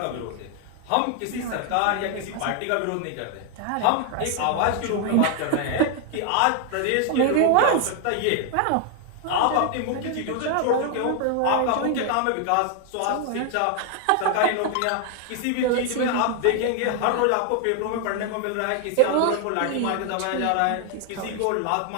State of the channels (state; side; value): different; both; correlation 0.00